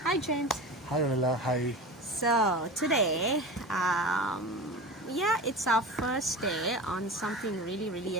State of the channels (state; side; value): normal; both; correlation 0.30